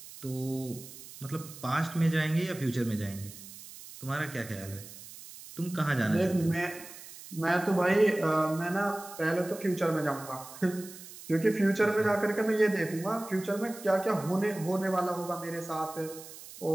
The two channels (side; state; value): right; noise; hiss, 16 dB below the sound